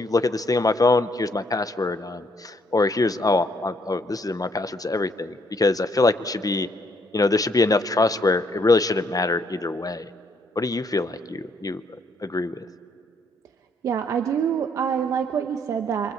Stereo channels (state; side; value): normal; both; correlation 0.69